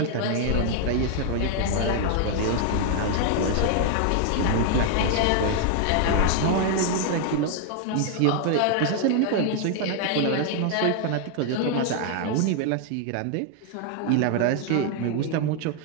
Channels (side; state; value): both; different; correlation 0.00